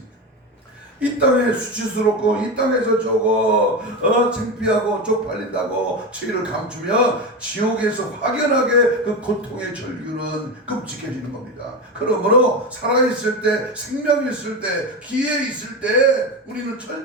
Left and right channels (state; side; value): normal; both; correlation 0.19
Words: 이 땅에 수치스럽고 이 땅에서 창피하고 쪽팔린다고 죄를 감추며 지옥에서 확연하게 그 고통의 절규는 끔찍해지는 겁니다. 그러므로 살아있을 때, 생명이 있을 때, 기회 있을 때 우리는